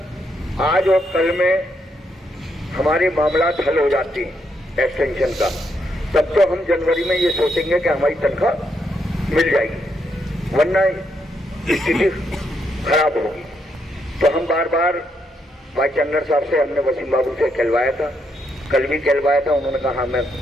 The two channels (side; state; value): both; normal; correlation 0.78